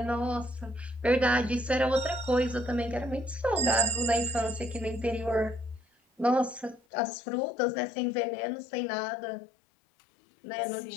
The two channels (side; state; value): right; drops out; at 6.8 s